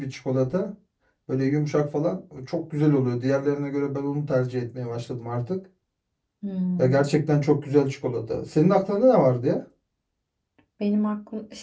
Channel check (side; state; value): both; identical; correlation 1.00